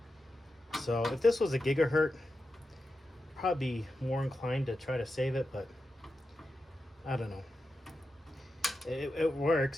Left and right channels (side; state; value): both; normal; correlation 0.90